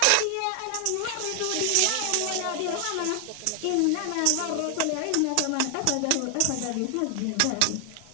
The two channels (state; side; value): different; both; correlation 0.00